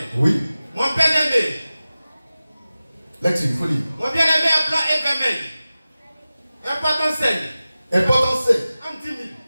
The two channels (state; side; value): inverted; both; correlation -0.96